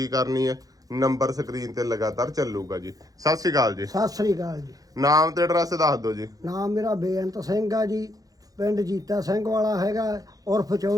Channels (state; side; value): late; left; 0.17 ms